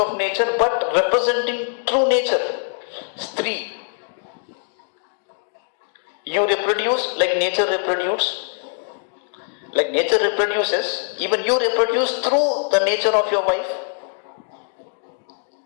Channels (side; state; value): right; silent; digital silence